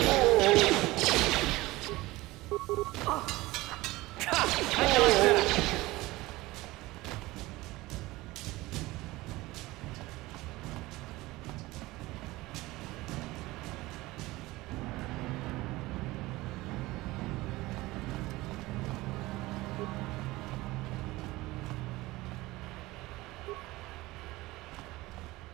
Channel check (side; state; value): left; quieter; 19.6 dB